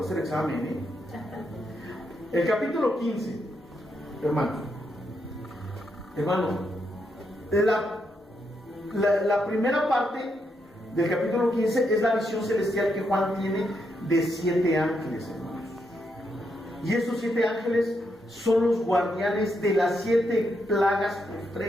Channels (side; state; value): both; normal; correlation 0.80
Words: a hacer examen, El capítulo 15, hermano, la primera parte del capítulo 15 es la visión celestial que Juan tiene de 7 ángeles, hermanos. Y estos 7 ángeles son los guardianes de las 7 plagas